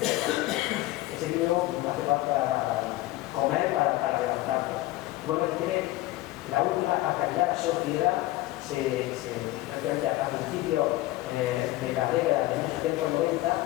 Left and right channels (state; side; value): quieter; right; 17.5 dB